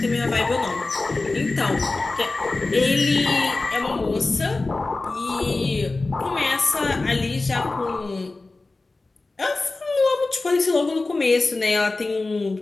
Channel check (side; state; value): right; quieter; 3.4 dB